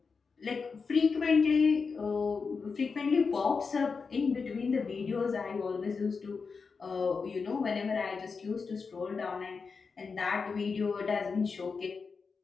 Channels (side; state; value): right; quieter; 5.0 dB